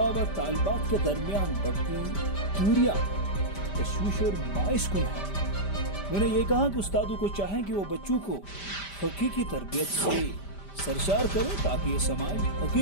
व तालिबात के दरमियान बढ़ती दूरियां तशवीश और बाइस कुन है। उन्होंने ये कहा कि उस्तादों को चाहें कि वो बच्चों को हकीकी तरबियत से सरशार करें ताकि ये समाज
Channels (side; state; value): right; late; 5.1 ms